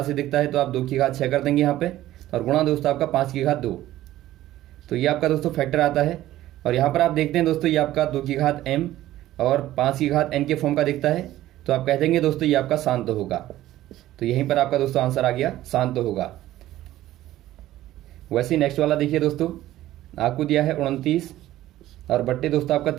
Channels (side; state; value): left; quieter; 14.6 dB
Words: से दिखता है। तो आप 2 की घात 6 कर देंगे यहाँ पे और गुणा दोस्तों आपका 5 की घात 2। तो ये आपका दोस्तों फैक्टर आता है। और यहाँ पर आप देखते हैं दोस्तों ये आपका 2 की घात m और 5 की घात n के फॉर्म का दिखता है। तो आप कह देंगे दोस्तों ये आपका शांत होगा। तो यहीं पर आपका दोस्तों आंसर आ गया, शांत होगा। वैसे नेक्स्ट वाला देखिए दोस्तों, आपको दिया है 29 और बट्टे दोस्तों आपका